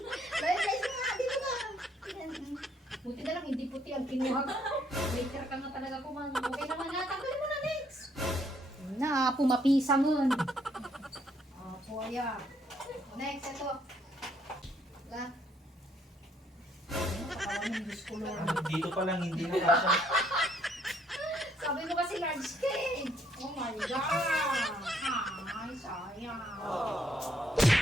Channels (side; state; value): both; normal; correlation 0.69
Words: Dahil guys, dito ka. Buti na lang, hindi puti ang kinuha ko. Waiter ka nga talaga kuman. Okay naman na, tanggalin mo na next. Pumapisa mo. Kuya. Next, ito. La. Nakakawanin, Diyos ko, Lord. Dito pa lang, hindi na kasha. Sabi mo kasi large cake. Oh my God. Ay, sayang.